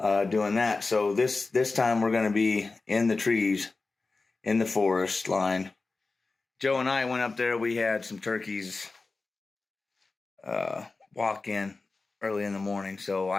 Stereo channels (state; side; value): quieter; right; 3.8 dB